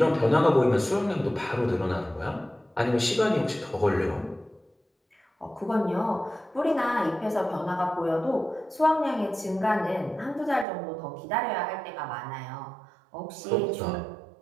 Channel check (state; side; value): drops out; left; at 10.7 s